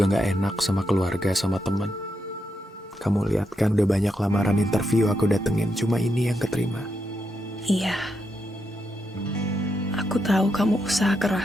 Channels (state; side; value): normal; both; correlation 0.83